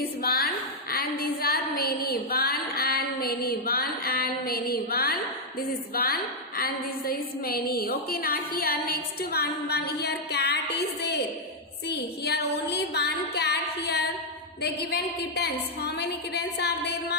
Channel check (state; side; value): normal; both; correlation -0.02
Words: one and these are many. One and many. One and many. One. This is one and this is many. Okay, now here next one. Here cat is there. See, here only one cat here. They given kittens. How many kittens are there,